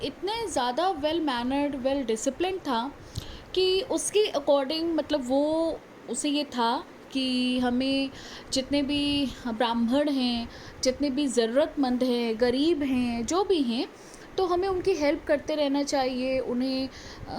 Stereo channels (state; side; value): identical; both; correlation 1.00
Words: इतने ज़्यादा वेल मैनर्ड, वेल डिसिप्लिन था कि उसके अकॉर्डिंग, मतलब वो उसे ये था कि हमें जितने भी ब्राह्मण हैं, जितने भी ज़रूरतमंद हैं, गरीब हैं, जो भी हैं, तो हमें उनकी हेल्प करते रहना चाहिए।